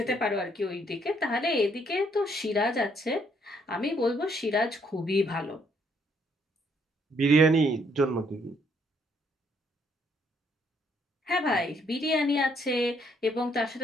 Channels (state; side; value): normal; both; correlation 0.69